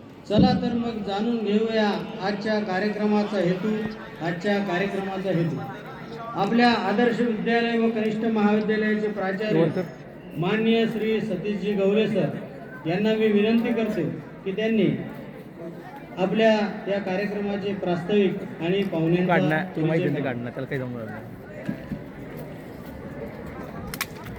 चला तर मग जाणून घेऊया आजच्या कार्यक्रमाचा हेतू. आपल्या आदर्श विद्यालय व कनिष्ठ महाविद्यालयाचे प्राचार्य माननीय श्री सतीशजी गवले सर यांना मी विनंती करतो की त्यांनी आपल्या या कार्यक्रमाचे प्रास्ताविक आणि पाहुण्यांना त्याला काही जमलं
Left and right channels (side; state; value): both; identical; correlation 1.00